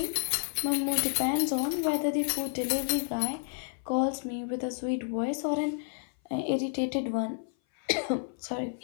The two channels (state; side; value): silent; right; 58 dB below the other